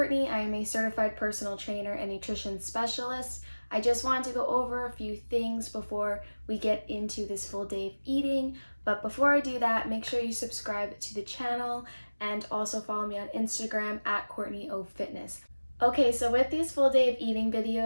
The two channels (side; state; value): both; inverted; correlation -1.00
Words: I am a certified personal trainer and nutrition specialist. I just wanted to go over a few things before we get into this full day of eating. But before I do that, make sure you subscribe to the channel and also follow me on Instagram at CourtneyOFitness. Okay, so with these full day of eating